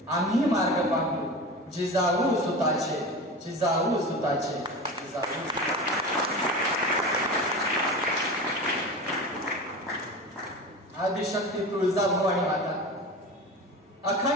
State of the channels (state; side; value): normal; both; correlation 0.30